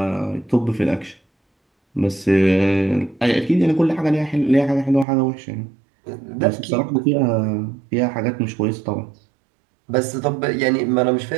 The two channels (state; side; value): drops out; left; at 5.1 s